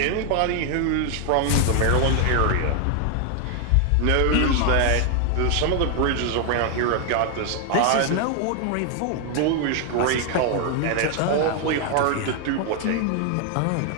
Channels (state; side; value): different; both; correlation 0.00